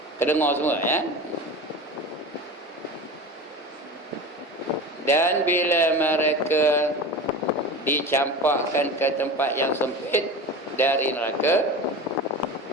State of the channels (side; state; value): both; normal; correlation 0.30